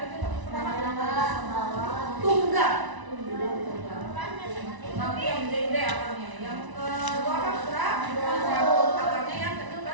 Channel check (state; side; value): late; left; 1.0 ms